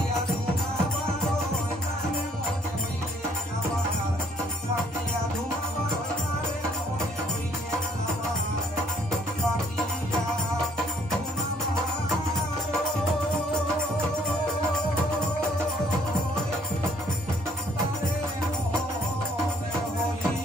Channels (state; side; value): normal; both; correlation 0.64